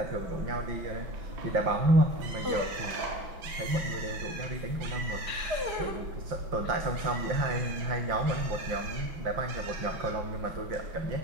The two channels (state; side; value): late; left; 5.7 ms